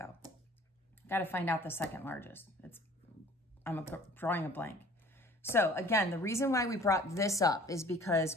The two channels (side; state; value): both; normal; correlation 0.50